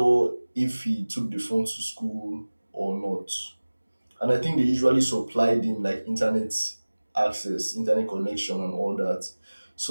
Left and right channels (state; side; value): inverted; both; correlation -1.00